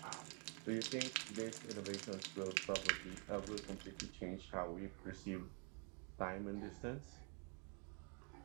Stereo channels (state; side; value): quieter; left; 36.8 dB